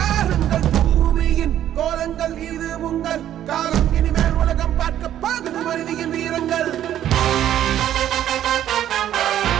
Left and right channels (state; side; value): quieter; left; 11.4 dB